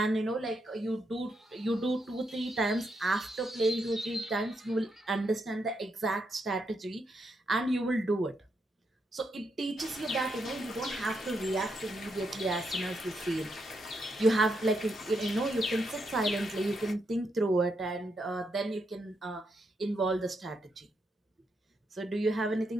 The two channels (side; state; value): both; normal; correlation 0.80